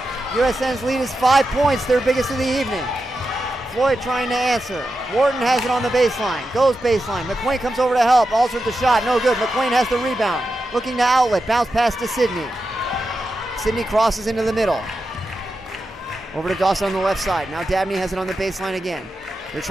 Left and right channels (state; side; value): normal; both; correlation 0.89